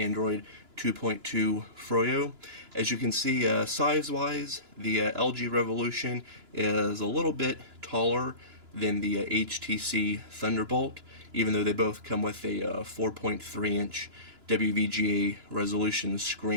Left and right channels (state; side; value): late; left; 2.9 ms